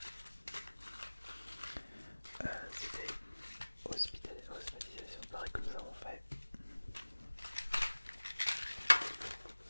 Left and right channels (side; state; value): both; inverted; correlation -1.00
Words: C'était hospitalisation pareil que nous avons fait.